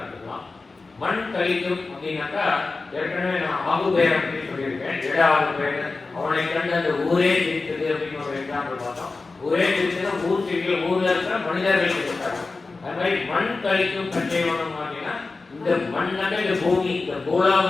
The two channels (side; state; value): right; quieter; 3.8 dB